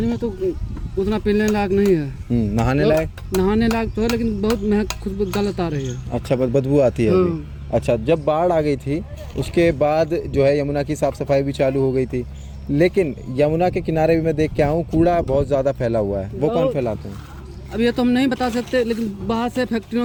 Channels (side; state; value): both; identical; correlation 1.00